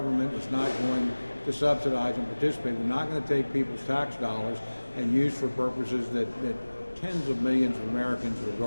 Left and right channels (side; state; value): both; inverted; correlation -1.00